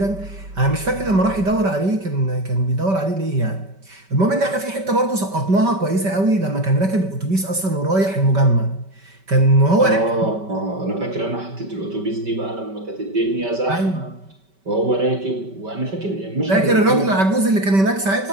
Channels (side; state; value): left; late; 5.2 ms